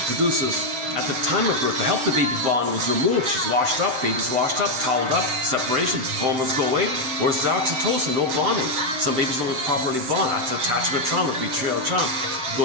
produces at the time of birth to help the baby bond was removed. She's washed up, baby's washed up, toweled up, separation, hormones go away. Where's the oxytocin? No bonding. Some babies don't properly bond. That's attachment trauma, betrayal trauma.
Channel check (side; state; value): left; late; 7.8 ms